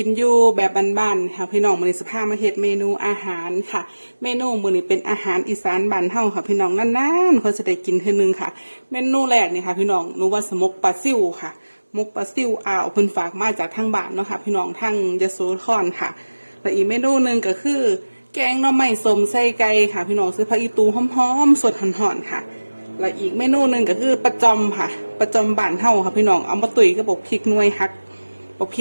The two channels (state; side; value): inverted; both; correlation -1.00